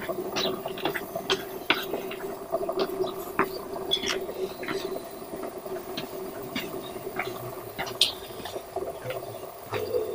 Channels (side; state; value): both; identical; correlation 1.00